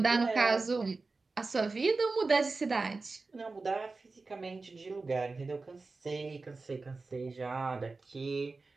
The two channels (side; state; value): left; quieter; 3.8 dB